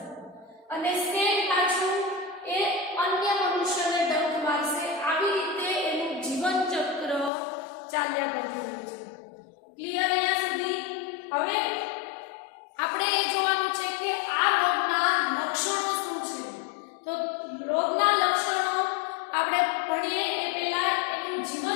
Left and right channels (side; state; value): right; drops out; at 7.3 s